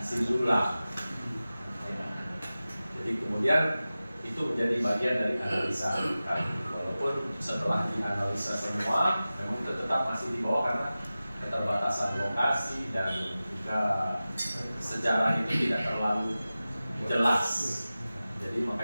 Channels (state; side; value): inverted; both; correlation -0.96